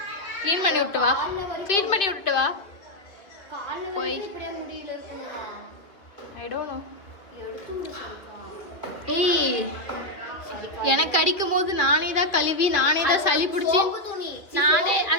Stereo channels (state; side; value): late; right; 2.3 ms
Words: க்ளீன் பண்ணி விட்டு வா க்ளீன் பண்ணி விட்டு வா போய் ஐ டோன்ட் நோ ஏய் எனக்கு அடிக்கும் போது நானே தான் கழுவி நானே தான் சளி பிடிச்சி நானே